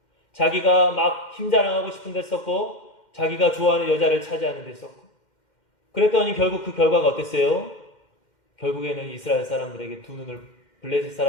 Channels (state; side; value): late; right; 2.1 ms